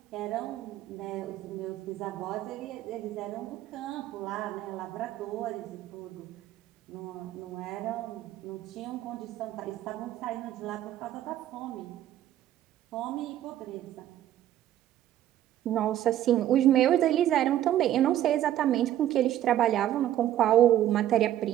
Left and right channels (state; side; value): quieter; left; 12.4 dB